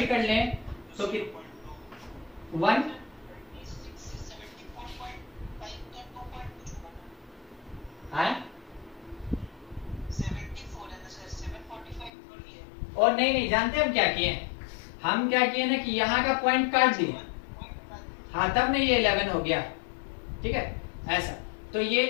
कर लें तो 1 और नहीं, जानते हम क्या किए, हम क्या किए ना कि यहाँ का पॉइंट काट दिए, हाँ तब नहीं ये 11 हो गया। ठीक है, ऐसा, तो ये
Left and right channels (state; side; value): drops out; right; at 12.1 s